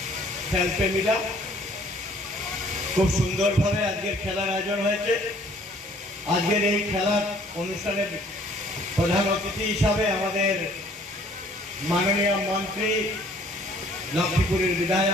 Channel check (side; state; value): both; normal; correlation 0.58